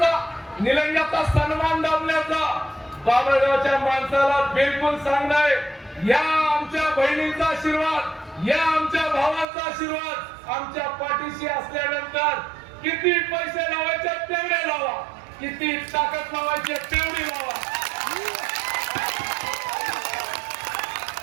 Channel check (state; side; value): drops out; left; at 9.5 s